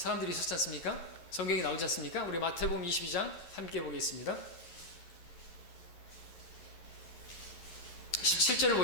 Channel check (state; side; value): late; right; 11 ms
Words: 있었지 않습니까? 성경이 나오지 않습니까? 우리 마태복음 22장 함께 보겠습니다. 17절을